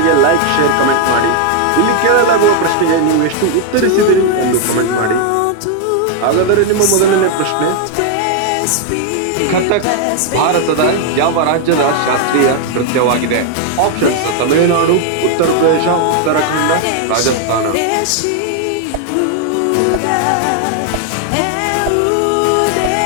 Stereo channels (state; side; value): different; both; correlation 0.00